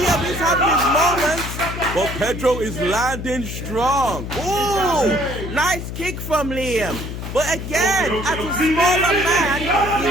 is having his moments. But Pedro is landing strong. Ooh, nice kick from Liam. But again, as a smaller man, he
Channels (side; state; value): left; noise; hum, 7 dB below the sound